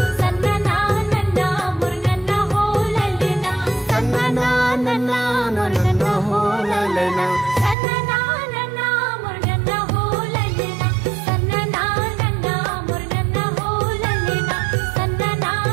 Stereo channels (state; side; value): drops out; left; at 7.8 s